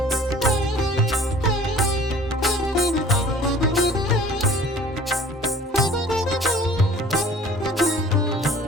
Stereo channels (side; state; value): both; normal; correlation 0.49